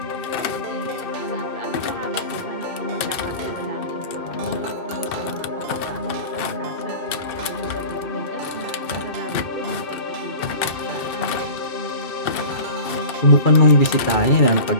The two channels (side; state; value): right; late; 2.7 ms